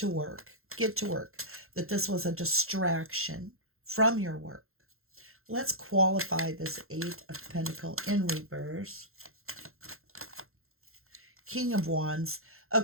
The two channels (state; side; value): late; left; 0.62 ms